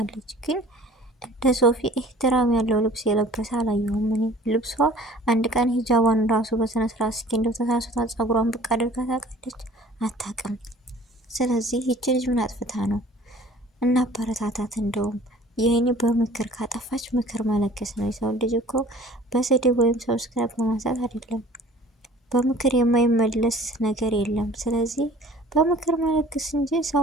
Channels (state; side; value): normal; both; correlation 0.49